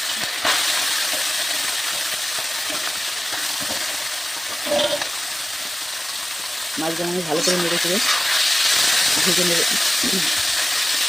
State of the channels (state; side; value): normal; both; correlation 0.97